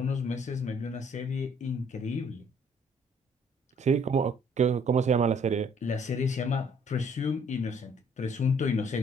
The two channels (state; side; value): normal; both; correlation 0.61